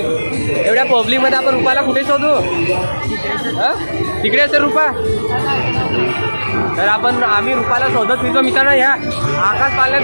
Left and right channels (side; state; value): both; inverted; correlation -1.00